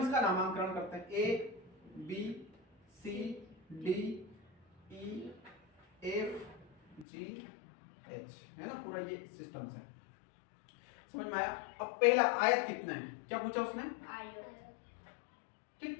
इसका नामांकन करते हैं, A B C D E F G H, है ना, पूरा ये सिस्टम से। समझ में आया। अब पहला आयत कितना है, क्या पूछा उसने,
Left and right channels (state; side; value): drops out; right; at 7.1 s